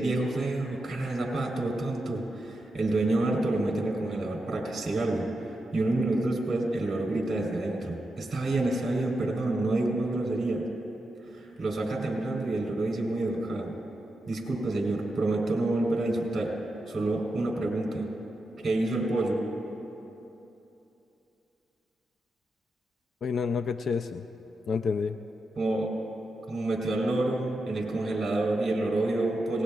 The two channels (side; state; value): both; normal; correlation 0.87